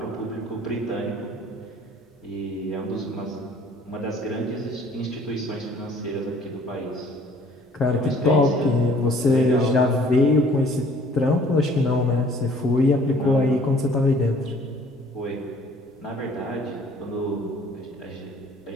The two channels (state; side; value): normal; both; correlation 0.55